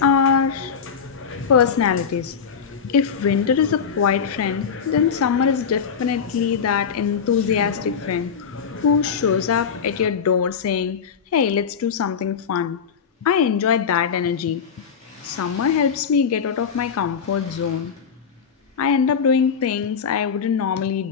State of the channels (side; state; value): right; quieter; 6.6 dB